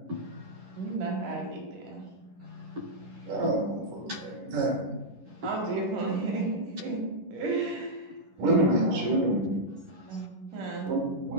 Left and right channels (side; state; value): left; late; 11 ms